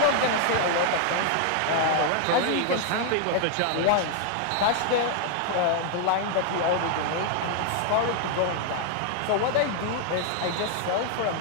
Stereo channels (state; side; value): different; both; correlation 0.00